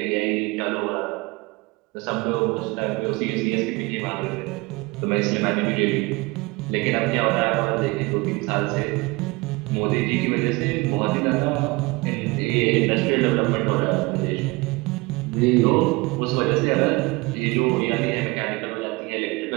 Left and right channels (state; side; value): quieter; left; 24.2 dB